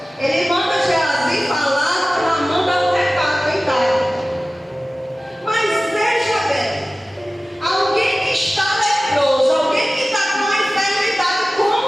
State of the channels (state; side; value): normal; both; correlation 0.96